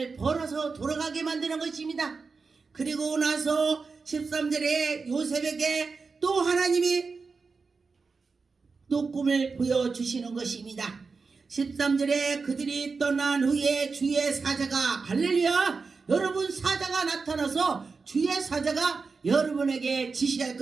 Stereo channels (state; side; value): quieter; left; 4.6 dB